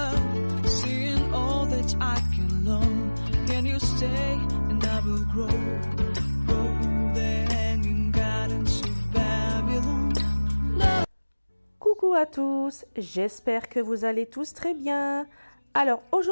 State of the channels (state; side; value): inverted; both; correlation -1.00